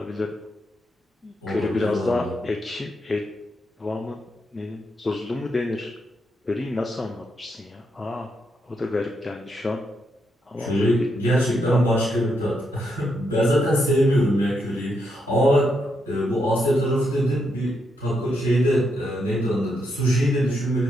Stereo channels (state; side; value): normal; both; correlation 0.80